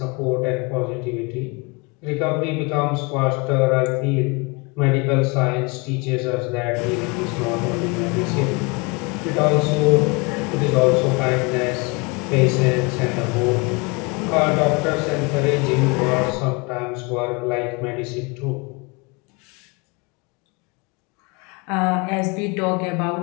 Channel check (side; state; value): right; quieter; 28.4 dB